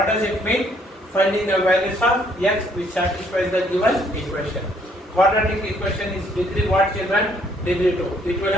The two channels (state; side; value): normal; both; correlation 0.66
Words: does it mean? Finding the values of x which satisfies the given equation. Quadratic equation is degree what children? Degree 2. It will